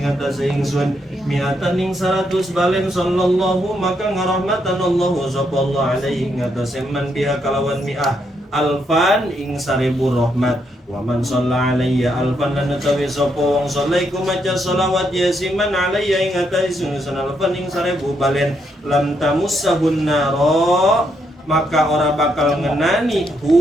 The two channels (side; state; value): both; normal; correlation 0.77